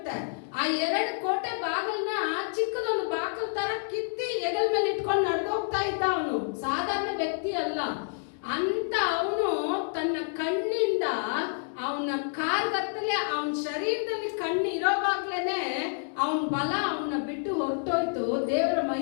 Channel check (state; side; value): silent; right; digital silence